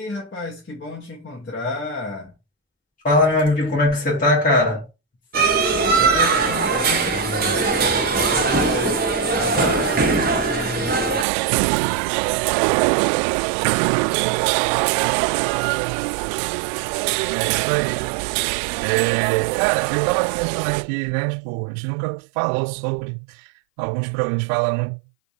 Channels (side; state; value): left; drops out; at 11.2 s